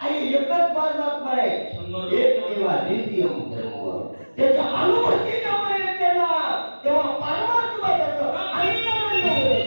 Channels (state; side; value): inverted; both; correlation -1.00